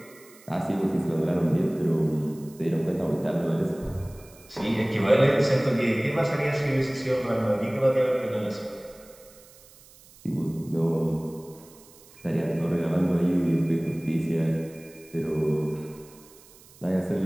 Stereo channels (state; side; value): noise; right; hiss, 24 dB below the sound